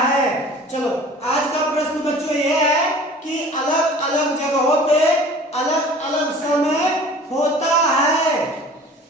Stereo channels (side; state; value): both; normal; correlation 0.45